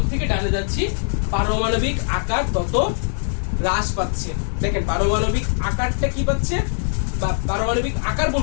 থেকে ডানে যাচ্ছি পারমাণবিক আকার তত হ্রাস পাচ্ছে। দেখেন পারমাণবিক আকারটা কি পাচ্ছে, বা পারমাণবিক আকার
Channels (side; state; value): right; silent; digital silence